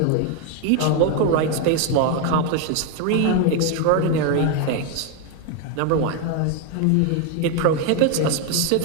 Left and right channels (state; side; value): different; both; correlation 0.01